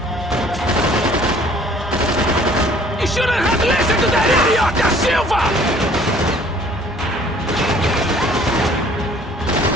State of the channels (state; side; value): normal; both; correlation 0.55